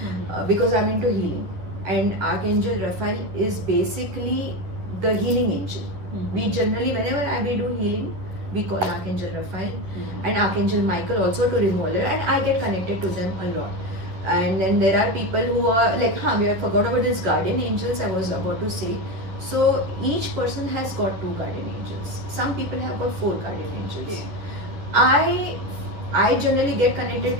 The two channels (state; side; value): late; left; 11 ms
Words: because I'm into healing. And Archangel Raphael is basically the healing angel. We generally, whenever we do healing, we call Archangel Raphael and Archangel Michael also to remove it, and I get connected to them a lot. And then there are people who are like, we have forgot about this guardian angels I was about to say. So each person has got 2 guardian angels. Some people have got 4 guardian angels. Okay. I generally get connected